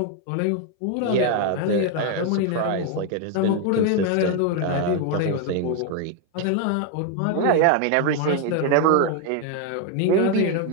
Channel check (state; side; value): different; both; correlation 0.01